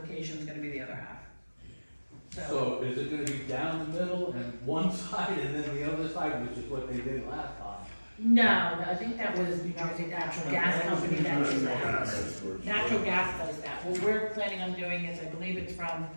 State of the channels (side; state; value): both; inverted; correlation -1.00